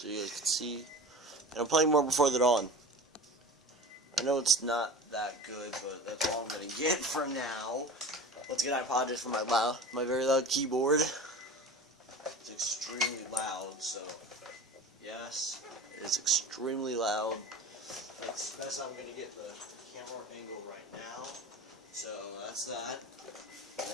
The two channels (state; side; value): normal; both; correlation 0.36